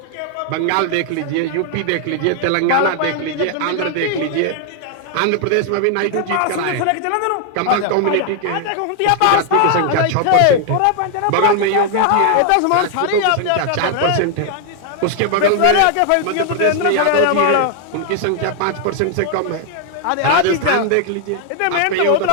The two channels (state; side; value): different; both; correlation 0.00